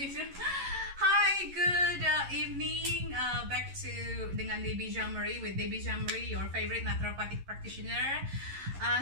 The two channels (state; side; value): late; left; 11 ms